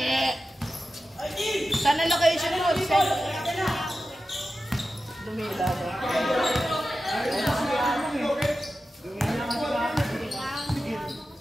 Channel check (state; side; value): normal; both; correlation 0.92